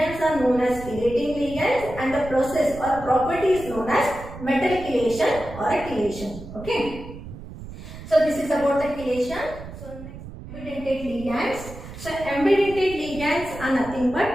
are known as chelating ligands, and the process or property is known as metal chelation or a chelation. Okay, so this is about the chelation. So next, ambidentate ligands. So ambidentate ligands are nothing but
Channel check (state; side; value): noise; right; rumble, 13 dB below the sound